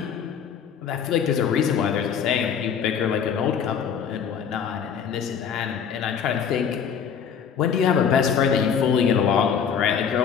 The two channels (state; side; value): quieter; right; 7.4 dB